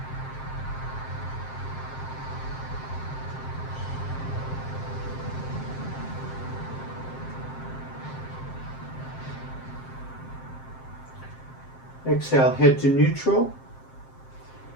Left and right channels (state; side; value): late; right; 7.6 ms